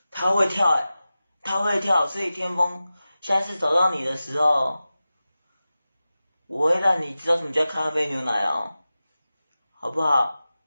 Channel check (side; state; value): both; inverted; correlation -0.95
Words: 他会跳他会跳，所以天风下次找到你的时候，我会让你知道什么叫咖啡牛奶哦，好不好？